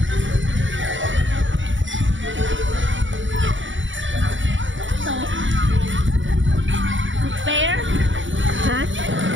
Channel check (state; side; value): late; left; 0.56 ms